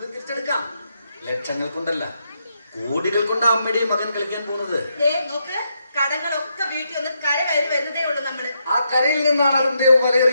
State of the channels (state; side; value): inverted; both; correlation -0.80